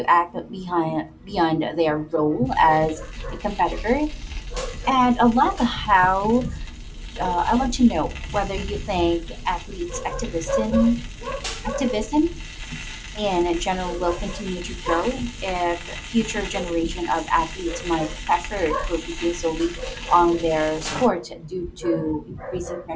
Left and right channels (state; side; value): identical; both; correlation 1.00